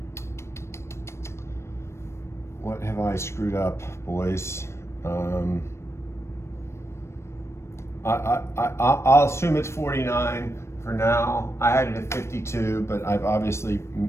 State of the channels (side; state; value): right; late; 0.13 ms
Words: have I screwed up, boys? I'll assume it's 49 for now. I had it at 52, but